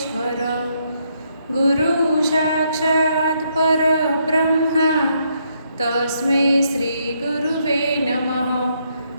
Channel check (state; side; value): inverted; both; correlation -0.75